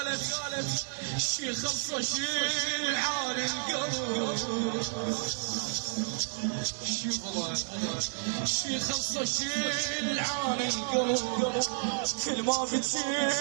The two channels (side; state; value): left; silent; digital silence